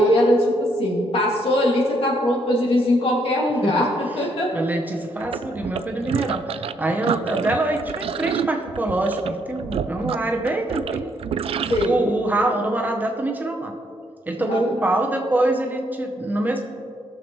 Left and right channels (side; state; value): both; normal; correlation 0.72